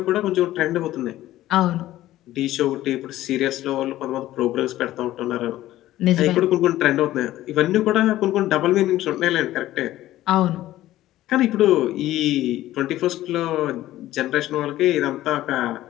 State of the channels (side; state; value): right; quieter; 14.8 dB